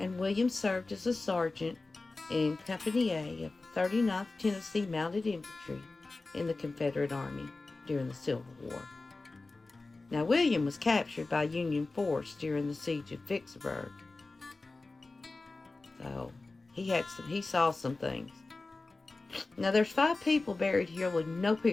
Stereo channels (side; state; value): right; quieter; 3.4 dB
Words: William served as a sergeant in Company A of the 39th Tennessee Mounted Infantry in the Confederate Army during the Civil War. Now, William was captured by Union force during the siege of Vicksburg. So, he saw some things. Now, there's 5 people buried here with no